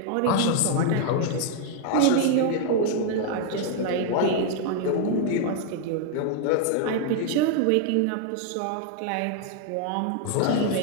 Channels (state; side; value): different; both; correlation 0.00